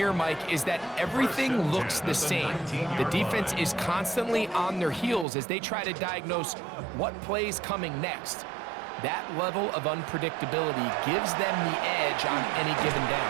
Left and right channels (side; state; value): left; drops out; at 5.2 s